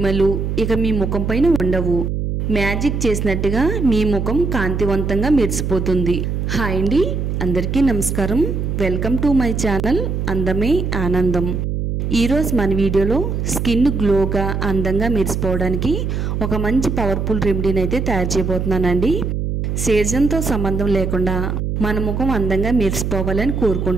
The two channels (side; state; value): right; noise; hum, 2 dB below the sound